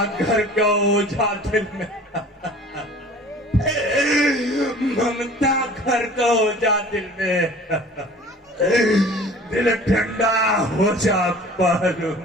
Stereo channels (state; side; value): normal; both; correlation 0.46